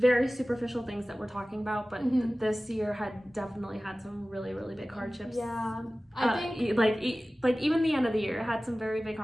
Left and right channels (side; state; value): both; normal; correlation 0.97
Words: superficial things that we're talking about, but this year had definitely had some really, really big hardships. Yeah, I think like even the end of the year had some very big